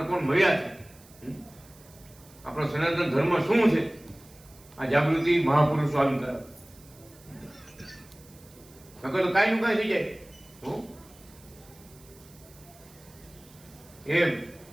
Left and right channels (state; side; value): noise; right; hiss, 24 dB below the sound